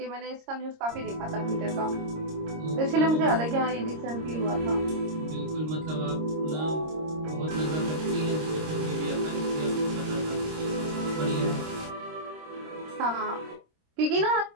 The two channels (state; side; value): late; left; 26 ms